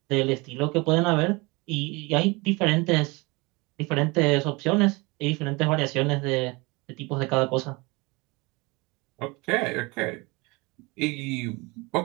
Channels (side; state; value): left; quieter; 25.8 dB